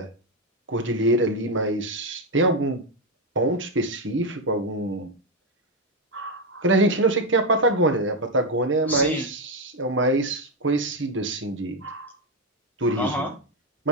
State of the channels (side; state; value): both; normal; correlation 0.06